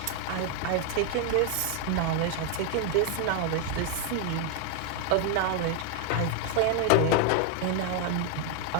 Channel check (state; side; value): different; both; correlation 0.01